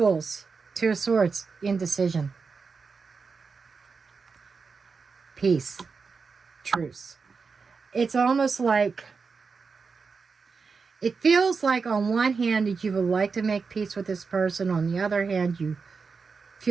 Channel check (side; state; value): left; quieter; 5.0 dB